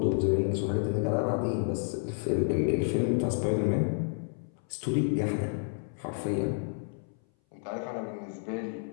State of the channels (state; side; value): silent; right; 58 dB below the other